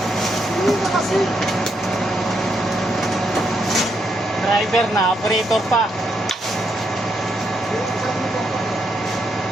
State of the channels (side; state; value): both; normal; correlation 0.79